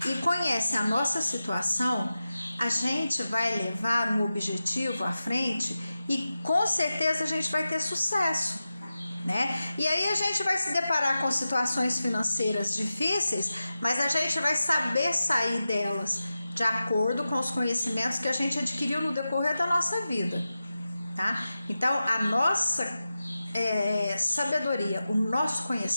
e conhece a nossa situação, a gente vai levar um objetivo à frente e com certeza a gente vai ter sucesso, né? E aí a gente vai se deparar com situações financeiras difíceis, mas a gente vai saber sair delas de acordo com os conhecimentos que a gente adquiriu no decorrer da nossa vida, tá? Então a nossa sabedoria, o nosso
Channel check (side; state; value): both; inverted; correlation -0.93